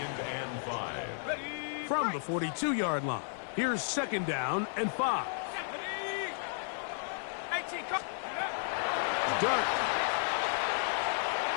and 5. From the 42-yard line, here's 2nd down and 5. Dart.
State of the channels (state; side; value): silent; right; 56 dB below the other